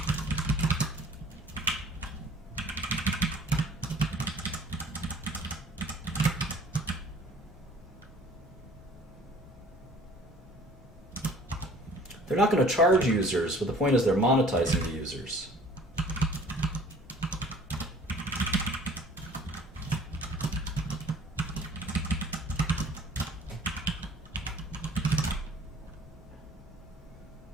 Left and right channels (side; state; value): both; normal; correlation 0.52